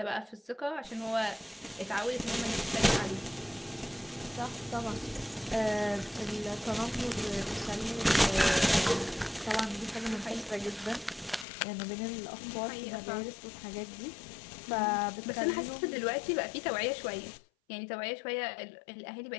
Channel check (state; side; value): drops out; right; at 11.5 s